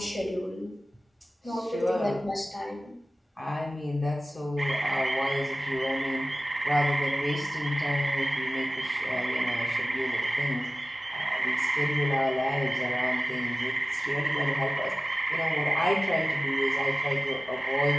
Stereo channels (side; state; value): both; normal; correlation 0.96